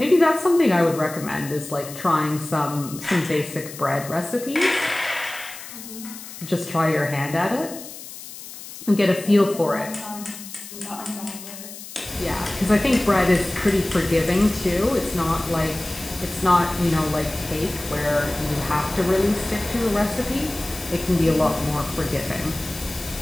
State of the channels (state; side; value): noise; left; hiss, 13 dB below the sound